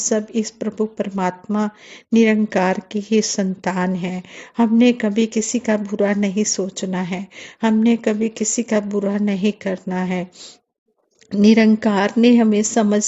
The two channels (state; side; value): identical; both; correlation 1.00